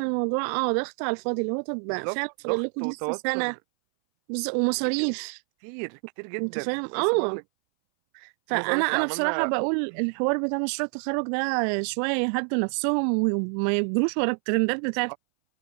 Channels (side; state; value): left; silent; 60 dB below the other